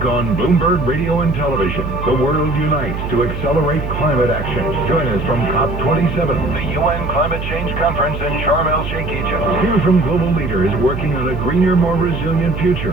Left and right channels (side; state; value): right; noise; hum, 6 dB below the sound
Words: on Bloomberg Radio and Television, the world unites to accelerate climate action. Join us from COP27, the UN Climate Change Conference in Sharm el-Sheikh, Egypt. Hear from global leaders working on a greener, more resilient future